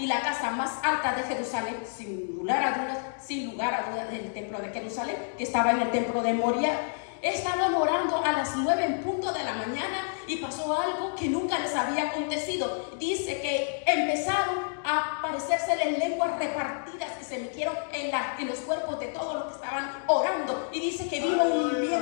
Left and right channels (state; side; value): silent; right; digital silence